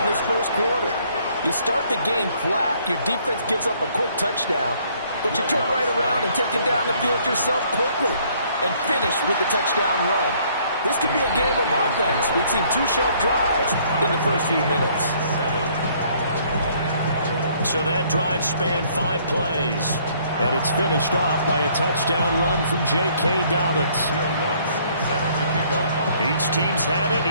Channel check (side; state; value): both; inverted; correlation -0.63